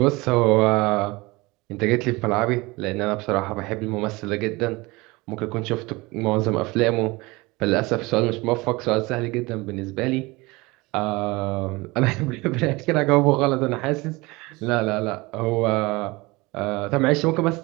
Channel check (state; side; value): quieter; left; 23.2 dB